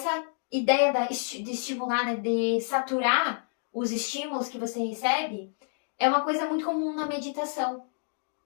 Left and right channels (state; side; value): silent; right; 56 dB below the other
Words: ideia de estimular, né, de saturar os estímulos que você recebe, é uma coisa muito comum na meditação.